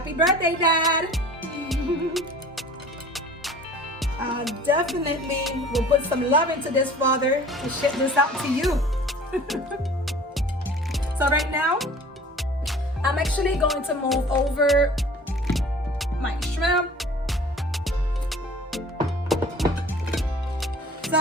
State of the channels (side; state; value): both; normal; correlation 0.46